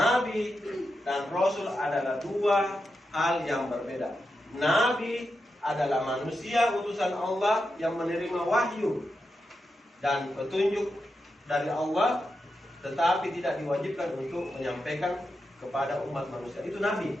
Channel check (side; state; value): both; normal; correlation 0.88